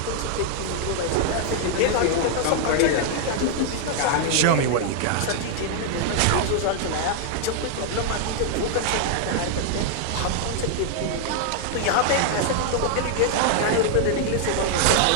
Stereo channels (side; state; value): both; different; correlation 0.00